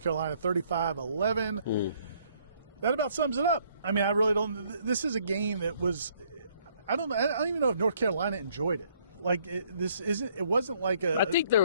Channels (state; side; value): inverted; both; correlation -0.64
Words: Carolina 35-11. That about sums it up. I mean, I really don't. This is a game that was. I don't even know if North Carolina enjoyed it. Like it wasn't like a. I think there